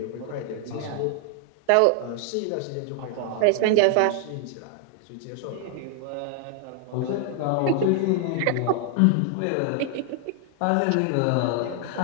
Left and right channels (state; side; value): different; both; correlation 0.00